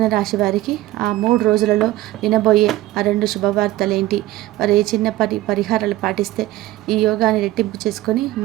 రాశి వారికి ఆ 3 రోజులలో వినబోయే ఆ 2 శుభవార్తలేంటి? వారు ఏ చిన్న పరిహారాలు పాటిస్తే ఈ యోగాన్ని రెట్టింపు చేసుకొని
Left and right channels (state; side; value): quieter; left; 16.2 dB